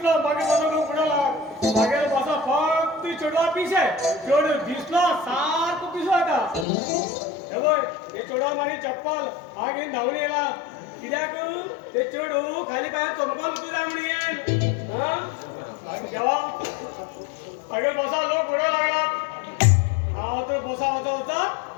चप्पल हा घेऊन धावून येला कित्याक ते चेडू खाली पायात चमकल तुझ्या म्हणून जेव्हा मागे बसा लोक पुढे लागलात हा तर बसा वाचा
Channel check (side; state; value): right; drops out; at 6.7 s